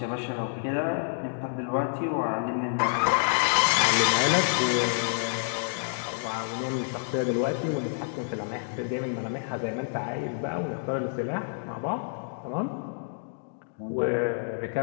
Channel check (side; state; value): right; silent; digital silence